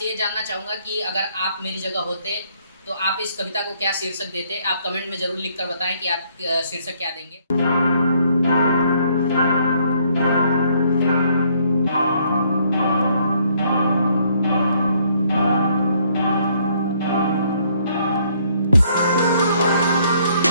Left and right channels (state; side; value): inverted; both; correlation -0.67